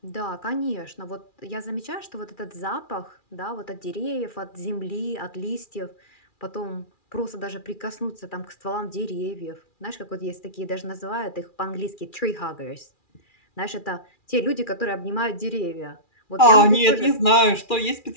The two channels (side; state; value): right; late; 2.4 ms